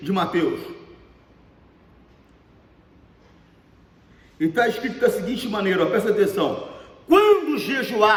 de Mateus. E está escrito da seguinte maneira, presta atenção: quando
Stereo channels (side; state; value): both; identical; correlation 1.00